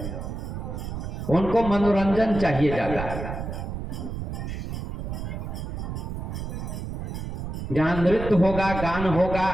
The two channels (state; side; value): noise; right; rumble, 5 dB below the sound